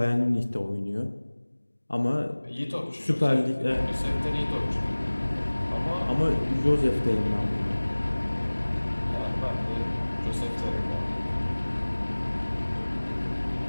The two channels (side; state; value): both; inverted; correlation -1.00